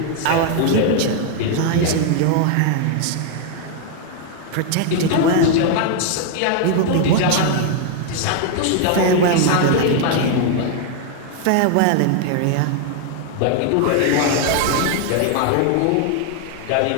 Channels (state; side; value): different; both; correlation 0.00